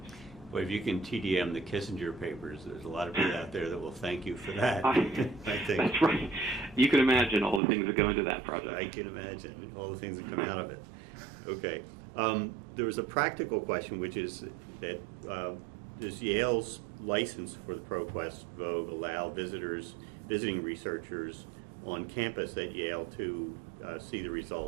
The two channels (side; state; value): left; drops out; at 7.6 s